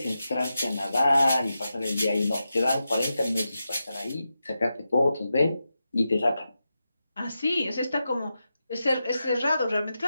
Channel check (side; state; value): both; inverted; correlation -0.90